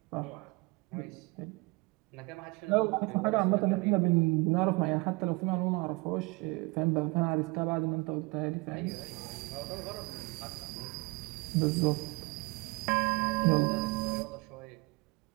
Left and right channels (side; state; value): left; quieter; 25.2 dB